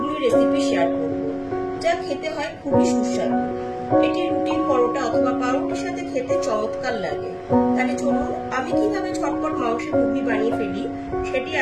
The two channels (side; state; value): both; identical; correlation 1.00